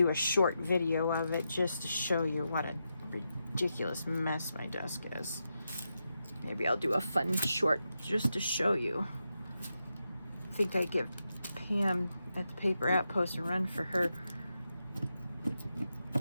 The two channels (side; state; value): both; inverted; correlation -0.87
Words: a short video of it just to show you what a ridiculous mess my desk is. Maybe I'll do a fun short just to show you. I think I give Pam at the Paper Outpost a run for her